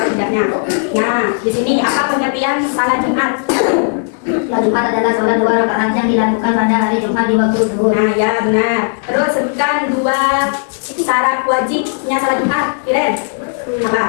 tidaknya. Nah, di sini apa pengertian sholat Jumat? Sholat Jumat adalah sholat 2 rakaat yang dilakukan pada hari Jumat di waktu zuhur. Nah ya benar. Terus sebutkan 2 syarat wajibnya sholat Jumat. Iren, apa?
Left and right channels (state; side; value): silent; right; digital silence